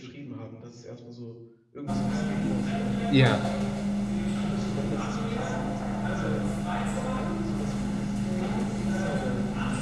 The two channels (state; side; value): identical; both; correlation 1.00